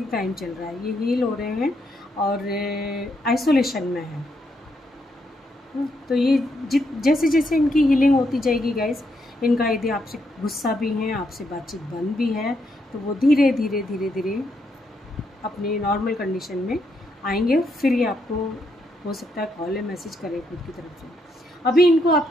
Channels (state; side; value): normal; both; correlation 0.78